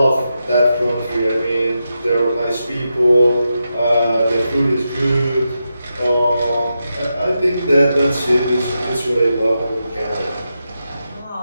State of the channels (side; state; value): both; inverted; correlation -0.88